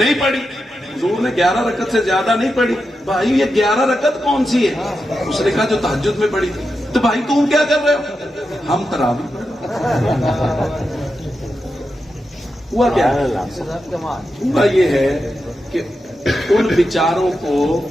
پڑھی حضور نے 11 رکعت سے زیادہ نہیں پڑھی بھائی یہ 11 رکعت کون سی ہے اس نے کہا جو تہجد میں پڑھی تھی تو بھائی تم کیا کر رہے ہو ہم تراوی ہوا کیا ہوا یہ ہے کہ ان بیچاروں کو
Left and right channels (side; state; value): both; normal; correlation 0.88